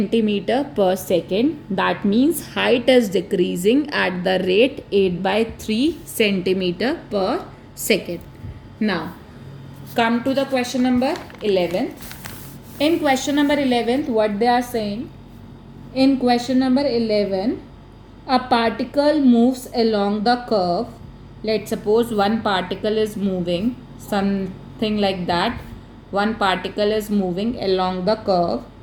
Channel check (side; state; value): both; identical; correlation 1.00